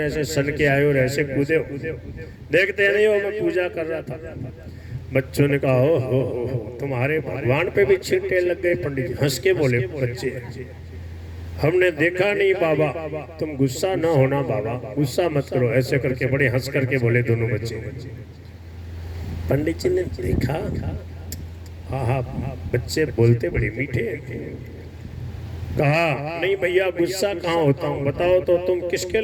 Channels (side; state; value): both; identical; correlation 1.00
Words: ऐसे सन के आए और ऐसे कूदे हो, देखते नहीं हो मैं पूजा कर रहा था। बच्चों ने कहा हो तुम्हारे भगवान पे भी छींटे लग गए। पंडित जी हंस के बोले, बच्चे हमने देखा नहीं बाबा, तुम गुस्सा ना होना बाबा, गुस्सा मत करो। ऐसे करके बड़े हंस करके बोले दोनों बच्चे। पंडित जी ने देखा, हाँ बच्चे बोलते बड़े मीठे। कहा नहीं भैया गुस्सा कहाँ होता हूँ, बताओ तो तुम किसके